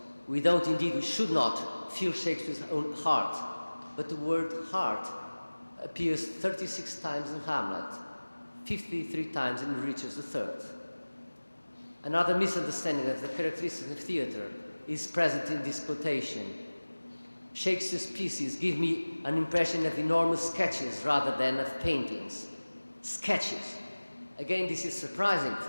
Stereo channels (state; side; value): inverted; both; correlation -1.00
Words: We should not feel Shakespeare's own heart, but the word heart appears 36 times in Hamlet, 53 times in Richard III. Another misunderstanding of the characteristics of theatre is present in this quotation. Shakespeare's pieces give me an impression of enormous sketches rather than of paintings. Sketches. Again, this is surprising,